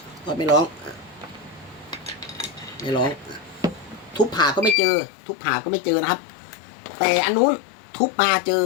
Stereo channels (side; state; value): right; drops out; at 4.8 s